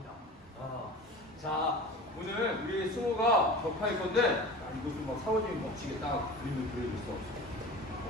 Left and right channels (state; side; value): normal; both; correlation 0.36